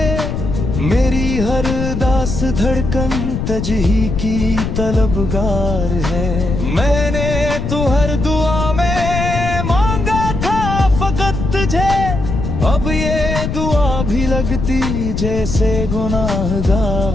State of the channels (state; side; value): noise; left; rumble, 3 dB below the sound